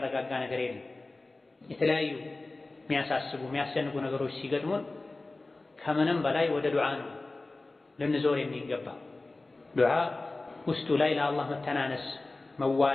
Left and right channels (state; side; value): quieter; right; 3.2 dB